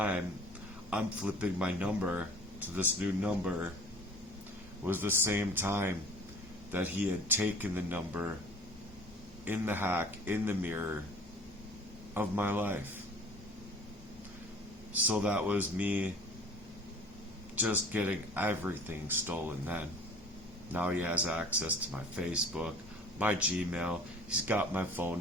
I'm flipping my number to this new number, was the same time that he had taken the number in the hack, in the mirror of my life. So that was me just getting everything stolen then. Now he has access to my Facebook, my Gmail, he's got my phone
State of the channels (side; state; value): both; normal; correlation 0.47